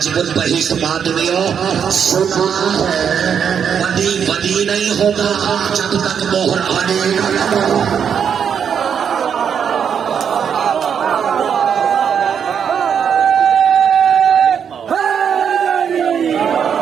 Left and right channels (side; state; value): left; quieter; 7.6 dB